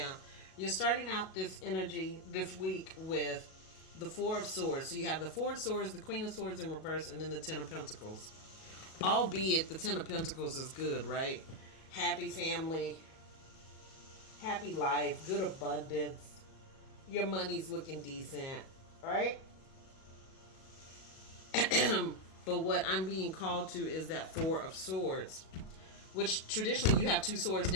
You're starting out this energy this week with the Four of Swords. So you have the Four of Swords, the Queen of Swords in reverse, and then the Ten of Pentacles. Albeit the Ten of Pentacles is good, right? Happy family, happy life, good abundance. Your money's looking decent, right? But what I'm being called to is that Four of Swords, which traditionally you have two swords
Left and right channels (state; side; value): late; right; 37 ms